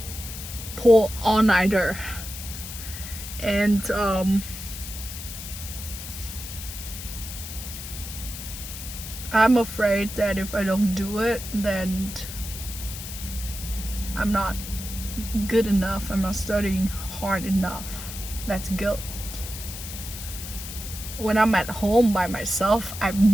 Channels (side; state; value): left; noise; hiss, 10 dB below the sound